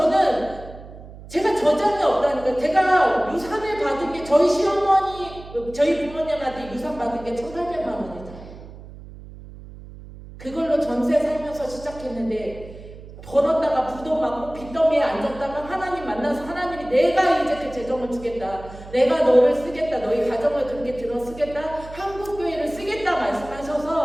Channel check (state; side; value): noise; right; hum, 16 dB below the sound